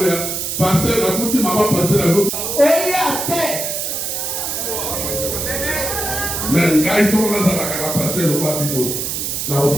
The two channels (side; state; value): right; noise; hiss, 3 dB below the sound